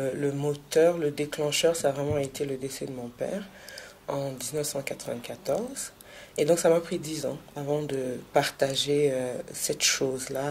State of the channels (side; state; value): both; identical; correlation 1.00